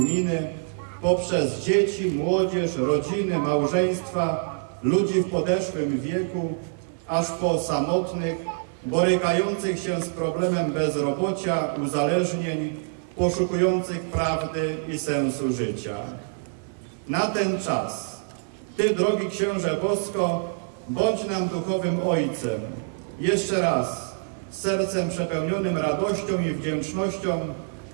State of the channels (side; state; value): left; silent; 61 dB below the other